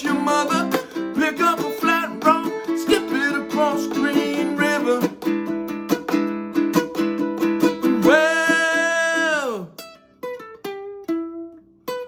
your mother. Pick up a flat rock, skip it across Green River. Well,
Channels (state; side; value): identical; both; correlation 1.00